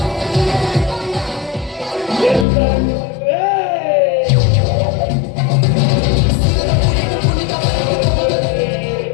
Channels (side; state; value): right; drops out; at 2.5 s